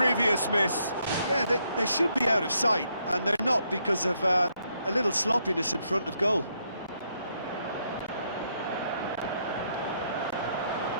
miss. Yeah, they should be out of sight, and they're not because of a little sloppiness in front of goal.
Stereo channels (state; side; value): inverted; both; correlation -0.75